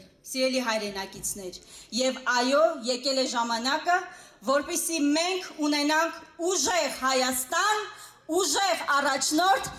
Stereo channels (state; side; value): identical; both; correlation 1.00